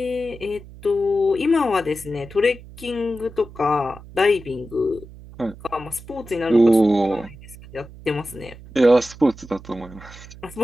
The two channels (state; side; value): noise; right; hum, 18 dB below the sound